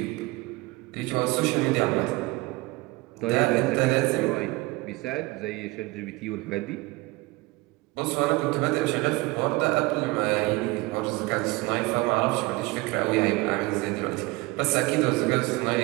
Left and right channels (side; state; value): left; quieter; 22.5 dB